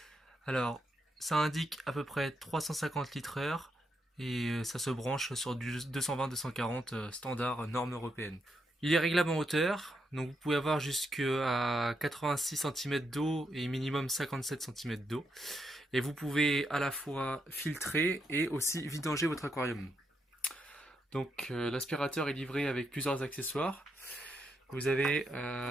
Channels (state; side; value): normal; both; correlation 0.81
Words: Alors ça indique à peu près 350 litres heure et ça se branche sur du 220-240 standard norme européenne. Il est réglable en hauteur, donc vous pouvez avoir jusqu'à 86 cm d'eau et minimum 57 cm d'eau. Et vous pouvez à la fois filtrer et aussi vidanger votre aquarium. Donc l'aspirateur est livré avec plusieurs accessoires. Vous avez